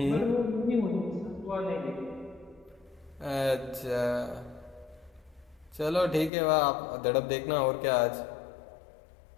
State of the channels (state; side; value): drops out; right; at 6.3 s